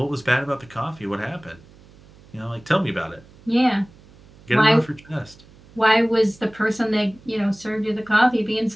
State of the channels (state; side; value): noise; right; hum, 25 dB below the sound